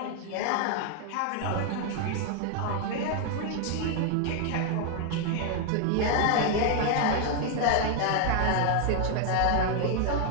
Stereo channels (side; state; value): both; different; correlation 0.00